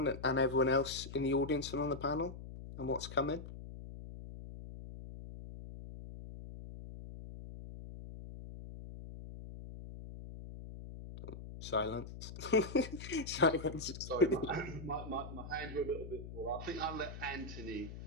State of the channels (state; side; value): noise; left; hum, 11 dB below the sound